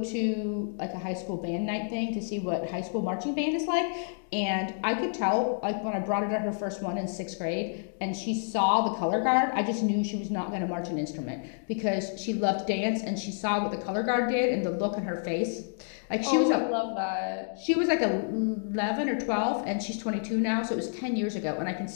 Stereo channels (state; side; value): silent; right; digital silence